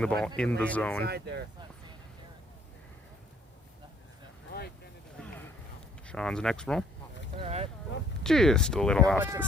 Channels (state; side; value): normal; both; correlation 0.62